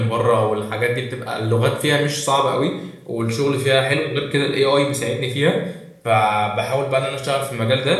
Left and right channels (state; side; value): identical; both; correlation 1.00